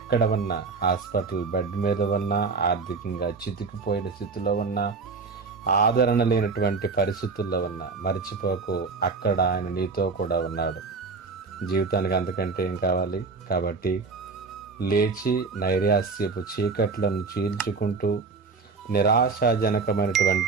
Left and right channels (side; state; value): left; quieter; 4.5 dB